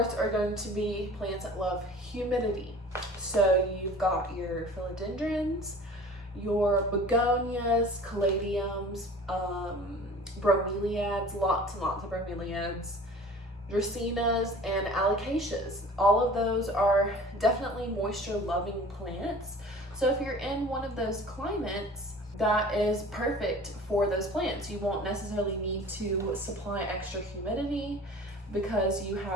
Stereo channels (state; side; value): normal; both; correlation 0.44